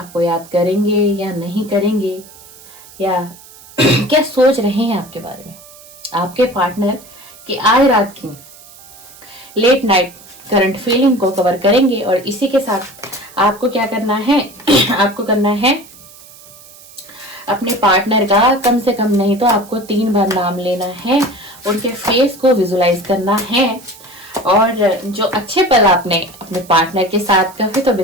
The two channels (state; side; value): noise; right; hiss, 21 dB below the sound